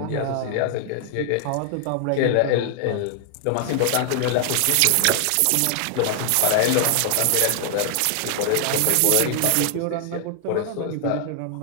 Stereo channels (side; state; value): both; different; correlation 0.00